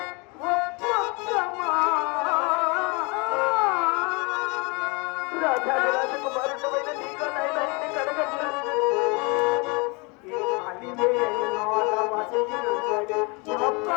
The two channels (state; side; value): quieter; right; 29.5 dB